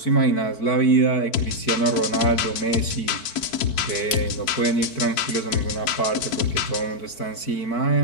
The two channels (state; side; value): late; right; 4.5 ms